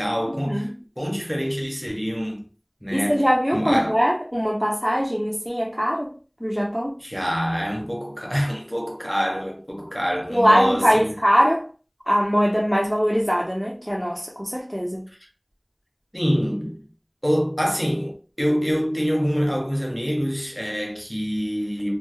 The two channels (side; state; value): both; identical; correlation 1.00